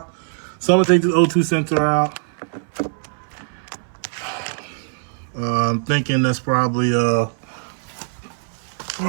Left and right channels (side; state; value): left; silent; 60 dB below the other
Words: So I'm gonna take this O2 sensor out. I'm thinking that's probably well,